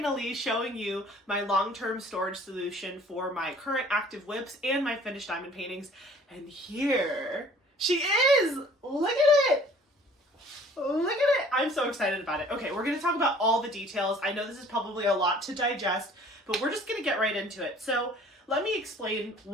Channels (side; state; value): both; normal; correlation 0.53